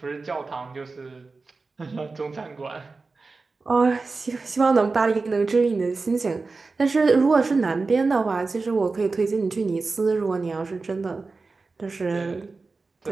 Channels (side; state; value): left; quieter; 4.0 dB